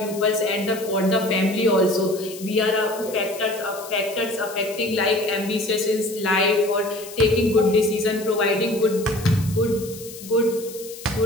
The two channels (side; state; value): left; noise; hiss, 15 dB below the sound